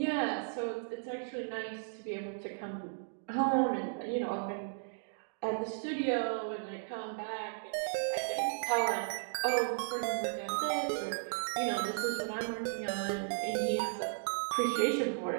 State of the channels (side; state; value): left; silent; digital silence